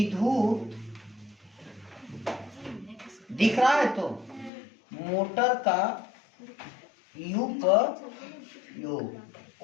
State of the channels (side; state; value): right; drops out; at 4.5 s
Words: दिख रहा है तो मोटर का उपयोग,